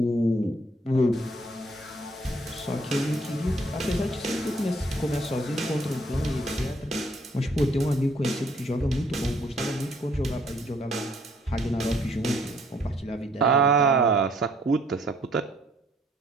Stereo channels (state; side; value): normal; both; correlation 0.64